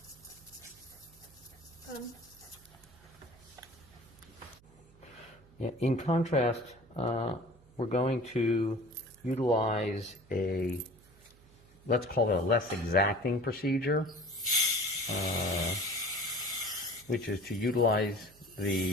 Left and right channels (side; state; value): right; noise; hum, 26 dB below the sound